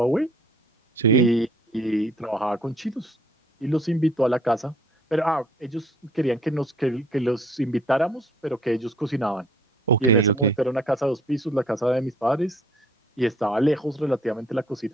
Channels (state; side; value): normal; both; correlation 0.59